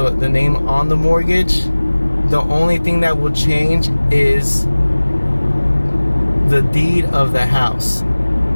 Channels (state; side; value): inverted; both; correlation -1.00